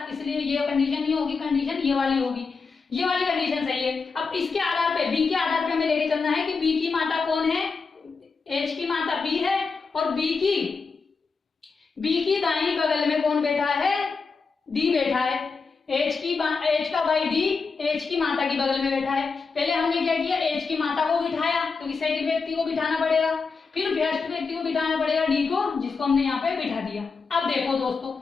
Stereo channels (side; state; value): right; quieter; 4.8 dB